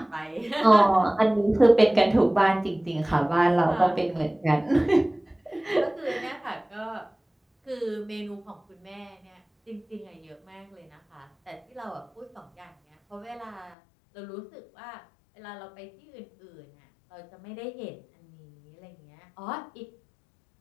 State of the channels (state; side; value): drops out; right; at 13.8 s